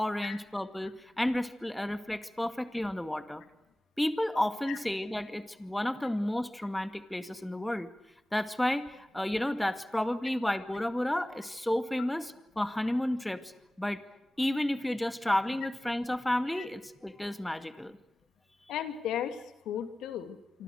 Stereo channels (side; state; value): both; normal; correlation 0.97